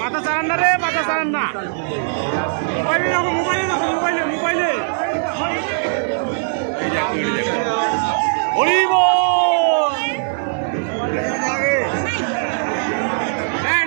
মাথা চালান না রে, মাথা চালান না। মোবাইলে রাখো, মোবাইলে রাখো, মোবাইলে মোবাইলে। হরিব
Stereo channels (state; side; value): silent; left; 66 dB below the other